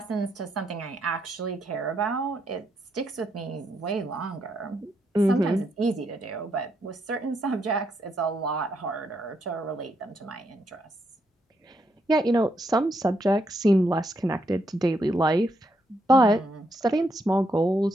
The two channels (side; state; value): both; normal; correlation 0.78